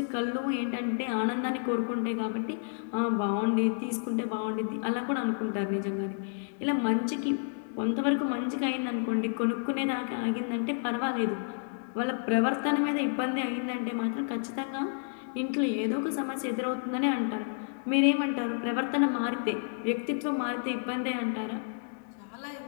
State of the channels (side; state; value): right; silent; digital silence